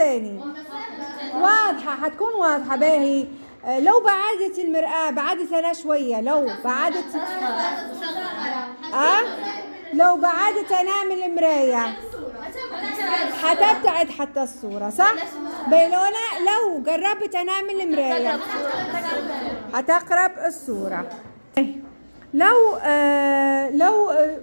واضحة، حتكون واضحة باهي. لو بعدت المرآة، بعدت أنا شوية، لو بعدت أنا من المراية حتبتعد حتى الصورة صح؟ لو قربت أنا من المراية حتقرب الصورة. لو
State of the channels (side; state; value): both; inverted; correlation -1.00